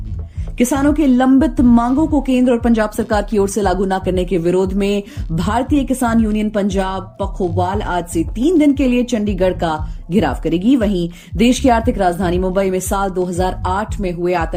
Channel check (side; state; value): both; identical; correlation 1.00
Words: किसानों की लंबित मांगों को केंद्र और पंजाब सरकार की ओर से लागू न करने के विरोध में भारतीय किसान यूनियन पंजाब पखोवाल आज से 3 दिन के लिए चंडीगढ़ का घेराव करेगी। वहीं देश की आर्थिक राजधानी मुंबई में साल 2008 में हुए